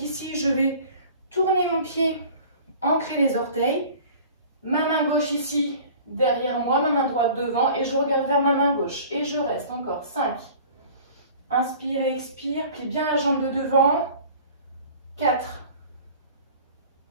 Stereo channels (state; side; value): inverted; both; correlation -0.45